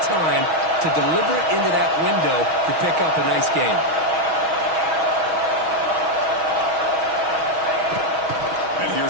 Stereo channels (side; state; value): left; late; 6.3 ms